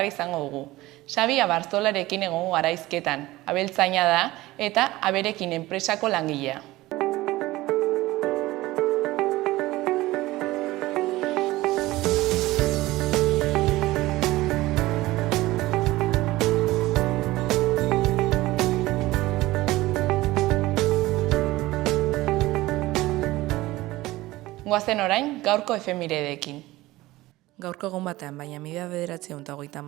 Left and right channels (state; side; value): quieter; left; 18.3 dB